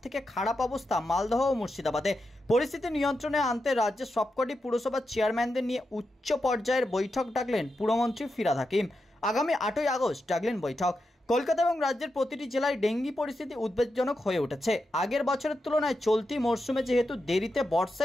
থেকে খারাপ অবস্থা মালদহ ও মুর্শিদাবাদে। পরিস্থিতি নিয়ন্ত্রণে আনতে রাজ্যের সবকটি পুরসভার চেয়ারম্যানদের নিয়ে উচ্চ পর্যায়ের বৈঠক ডাকলেন পুরমন্ত্রী ফিরহাদ হাকিম। আগামী 8ই আগস্ট ডাকলেন বৈঠক। কলকাতা এবং রাজ্যের প্রতিটি জেলায় ডেঙ্গি পরিস্থিতি উদ্বেগজনক হয়ে উঠেছে। আগের বছরের তুলনায় চলতি মরশুমে যেহেতু দেরিতে বর্ষা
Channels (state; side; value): normal; both; correlation 0.87